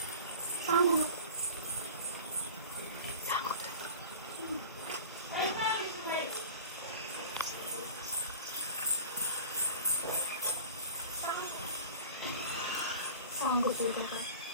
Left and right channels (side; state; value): both; inverted; correlation -0.37